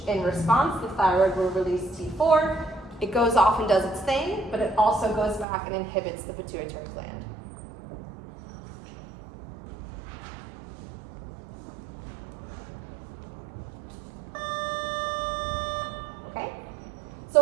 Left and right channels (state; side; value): drops out; left; at 5.5 s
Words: In response, the thyroid will release T4. It goes off and does its thing, but it also goes back and inhibits the pituitary gland. Okay? So